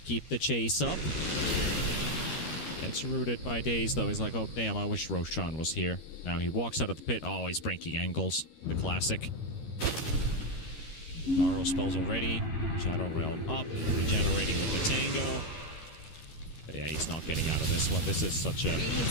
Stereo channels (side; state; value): right; late; 13 ms